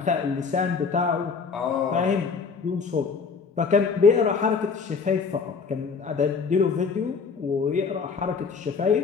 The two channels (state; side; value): quieter; right; 5.3 dB